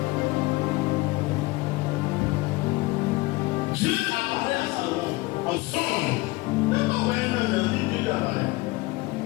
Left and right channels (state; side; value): quieter; right; 22.0 dB